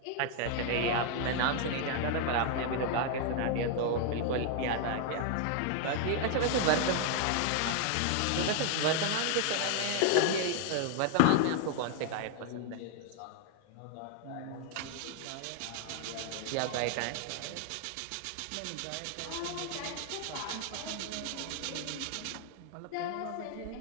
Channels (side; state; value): both; different; correlation 0.00